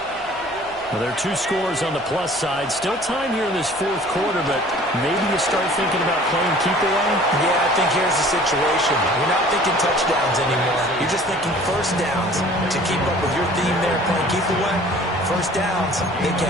Well, there are 2 scores on the plus side. Still time here in this 4th quarter, but maybe you start thinking about playing keep away? Yeah, I think here's the situation. You're not thinking touchdowns anymore. You're just thinking 1st downs. To keep up with your theme there, playing keep away, 1st downs, they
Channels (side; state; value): left; noise; hum, 27 dB below the sound